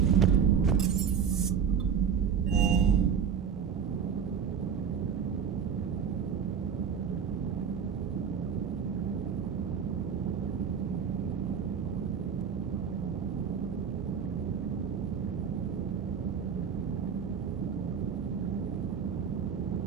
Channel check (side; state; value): left; quieter; 7.1 dB